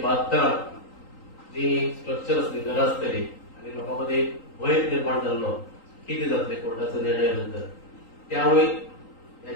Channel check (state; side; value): late; right; 3.8 ms